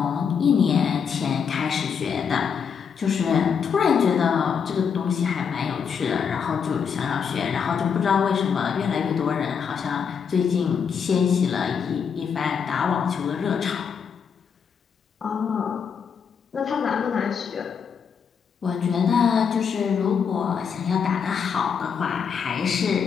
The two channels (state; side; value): quieter; right; 6.7 dB